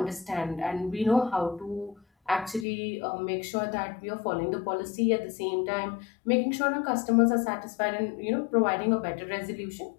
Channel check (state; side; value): drops out; right; at 2.7 s